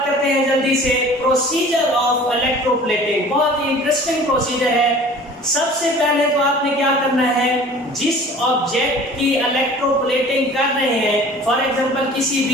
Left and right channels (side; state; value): both; normal; correlation 0.45